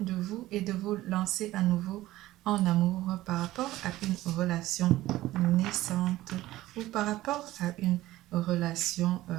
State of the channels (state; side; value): quieter; left; 16.2 dB